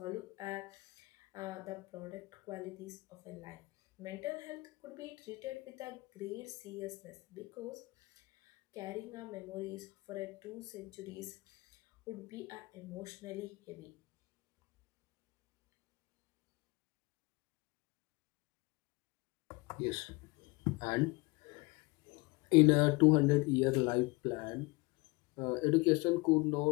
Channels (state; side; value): quieter; right; 25.3 dB